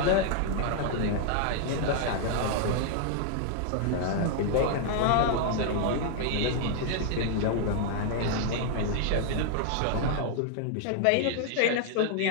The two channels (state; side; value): different; both; correlation 0.00